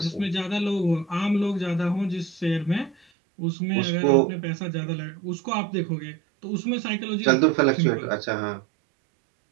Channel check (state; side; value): drops out; left; at 3.0 s